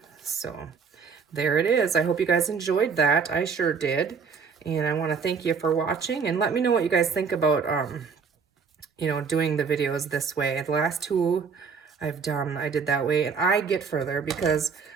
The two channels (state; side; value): quieter; left; 5.8 dB